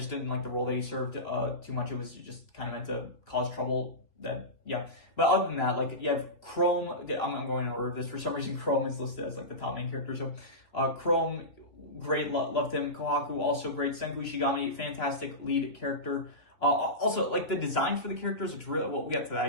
didn't like the role that he served too much. It was just kind of meant to cause trouble yeah. But other than that, like, you have Chrome. I'm going in order of this. For some reason, Chrome is listed as like the top main character. So, Chrome, great, loved him. Kohaku, also great. Senku Ishigami, fantastic lead character. Also, like, the design for the characters looks really well. We got to that, I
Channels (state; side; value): late; right; 2.8 ms